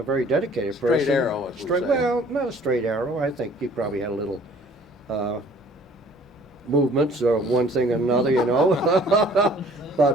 dedicated Straight person. arrow, as we Straight, say. well, not a straight arrow. I think he probably had a little movements or one thing or another, you know.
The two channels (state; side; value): normal; both; correlation 0.54